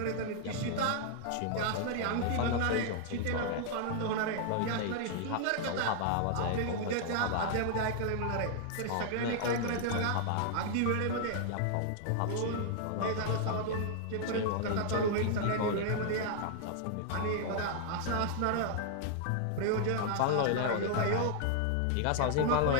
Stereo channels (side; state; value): both; different; correlation -0.01